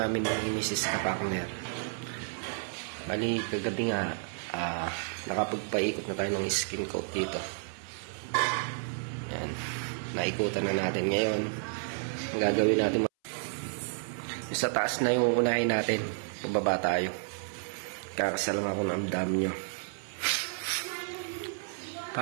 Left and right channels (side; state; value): left; silent; 57 dB below the other